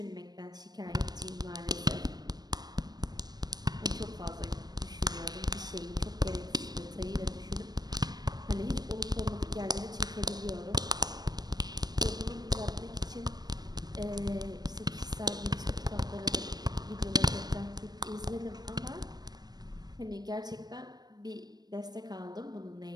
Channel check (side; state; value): left; late; 0.19 ms